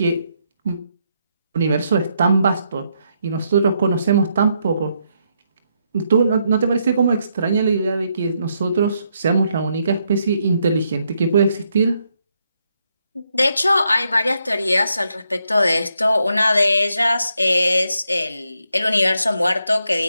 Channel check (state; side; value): inverted; both; correlation -0.78